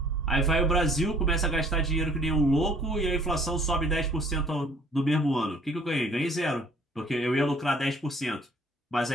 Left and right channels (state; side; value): normal; both; correlation 0.57